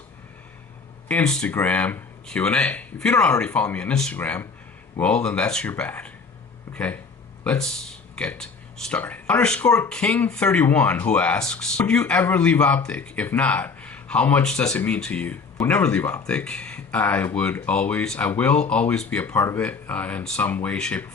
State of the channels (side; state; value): right; quieter; 4.8 dB